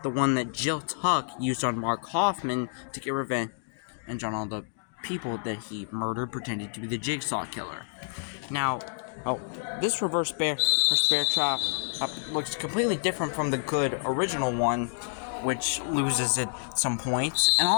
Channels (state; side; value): silent; right; digital silence